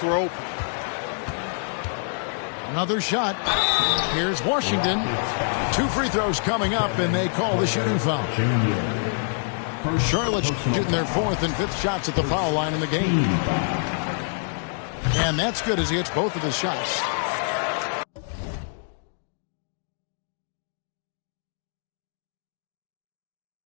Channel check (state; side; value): silent; right; digital silence